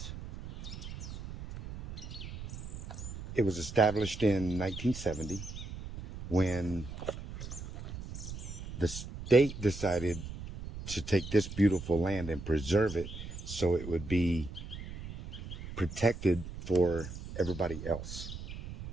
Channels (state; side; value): noise; right; rumble, 10 dB below the sound